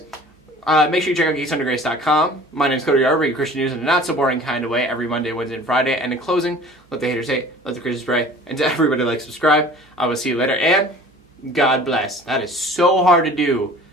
make sure you check out geeksundergrace.com. My name is Cody, I bring you Christian news in a not so boring kind of way every Monday, Wednesday, and Friday. And in closing, let the haters hate, let the Christians pray, and to everybody like, subscribe. I will see you later, and God bless. That is so hard to do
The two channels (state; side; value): normal; both; correlation 0.46